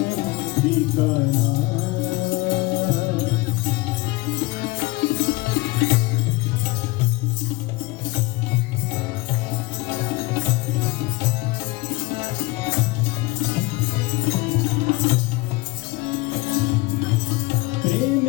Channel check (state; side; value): quieter; right; 22.6 dB